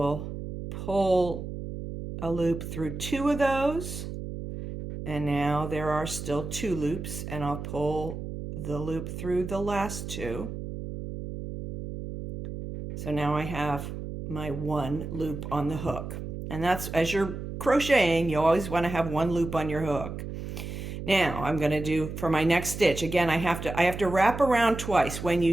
pull a loop through 2 of those. And now there are still 2 loops, and I'll pull the loop through the last 2. So now I have my 1 loop on the hook. And that's, as you're crocheting, you always want to have 1 loop on your hook. Now I'm going to do for my next stitch. Again, I have to wrap around twice. When you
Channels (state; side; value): noise; right; hum, 7 dB below the sound